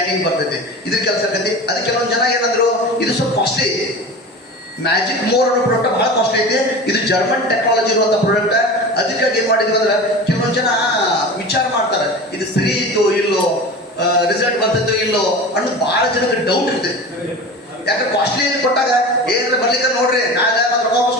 ಬರ್ತೈತಿ. ಇದ್ರ ಕೆಲಸ ಆಗ್ತೈತಿ. ಅದಕ್ಕೆ ಕೆಲವೊಂದು ಜನ ಏನಂದ್ರು ಇದು ಸ್ವಲ್ಪ ಕಾಸ್ಟ್ಲಿ. ಮ್ಯಾಜಿಕ್ ಮೋರ್ ಅನ್ನೋ ಪ್ರಾಡಕ್ಟ್ ಬಹಳ ಕಾಸ್ಟ್ಲಿ ಐತಿ. ಇದು ಜರ್ಮನ್ ಟೆಕ್ನಾಲಜಿ ಇರುವಂತ ಪ್ರಾಡಕ್ಟ್. ಅದಕ್ಕಾಗಿ ಏನ್ ಮಾಡಿದ್ವಿ ಅಂದ್ರೆ ಕೆಲವೊಂದು ಜನ ವಿಚಾರ ಮಾಡ್ತಾರೆ ಇದು ಸರಿ ಇತ್ತು ಇಲ್ಲೋ, ರಿಸಲ್ಟ್ ಬರ್ತೈತೋ ಇಲ್ಲೋ ಅನ್ನೋದು ಬಹಳ ಜನಕ್ಕೆ ಡೌಟ್ ಇರ್ತೈತಿ. ಯಾಕೆ ಕಾಸ್ಟ್ಲಿ ಕೊಟ್ಟಾಗ ಏನಾರ ಬರ್ಲಿಕ್ಕೆ ನೋಡ್ರಿ ನಾಳೆ ಮತ್ತೆ ರೊಕ್ಕ ವಾಪಸ್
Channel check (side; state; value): both; normal; correlation 0.33